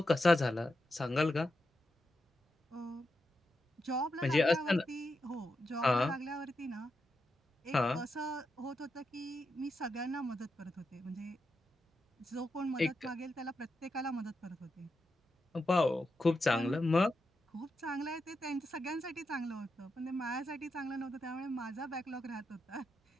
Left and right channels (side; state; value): both; normal; correlation 0.86